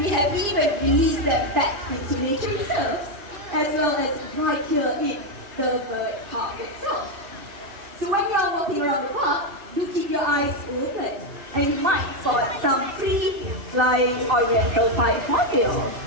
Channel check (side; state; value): left; late; 2.6 ms